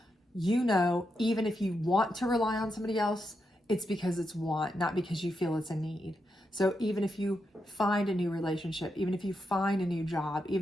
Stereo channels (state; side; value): normal; both; correlation 0.84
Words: You know, even if you want to rely on somebody else, it's because it's want, not because you feel it's a need. So even if you find a new relationship, even if you find a new job,